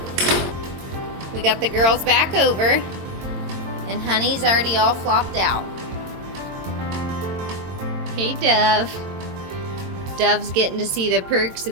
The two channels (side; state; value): left; late; 22 ms